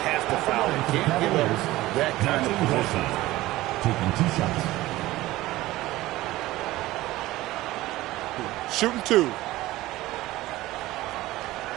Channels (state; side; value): quieter; left; 17.4 dB